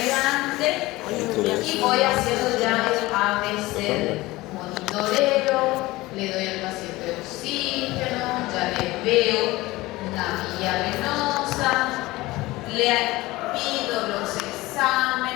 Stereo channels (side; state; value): right; quieter; 19.5 dB